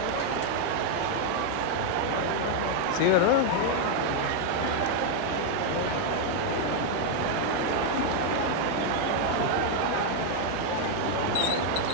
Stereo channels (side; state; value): both; different; correlation 0.01